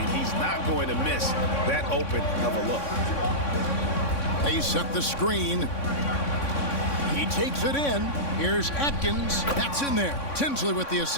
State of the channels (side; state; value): right; late; 3.6 ms